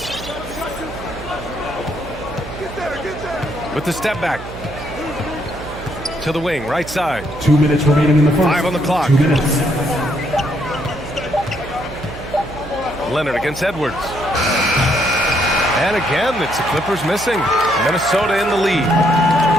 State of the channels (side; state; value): right; noise; hum, 13 dB below the sound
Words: With the step back. To the wing, right side. 2 minutes remaining in the first. 5 on the clock. 2 minutes. Leonard against Edwards. And again, it's the Clippers missing. Minnesota in the lead.